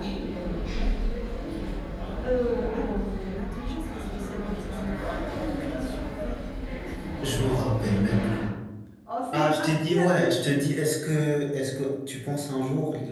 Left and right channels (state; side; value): identical; both; correlation 1.00